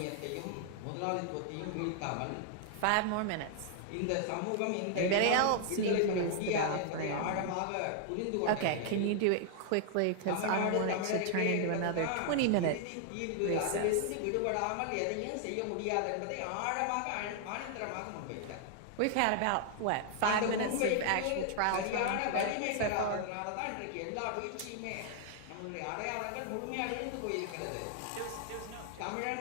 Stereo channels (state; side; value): different; both; correlation 0.00